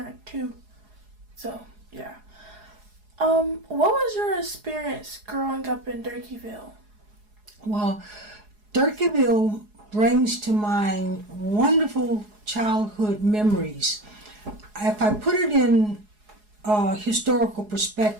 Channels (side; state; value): left; late; 4.8 ms